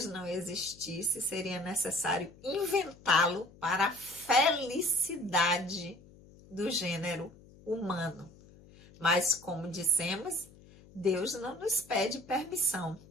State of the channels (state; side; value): noise; left; hum, 23 dB below the sound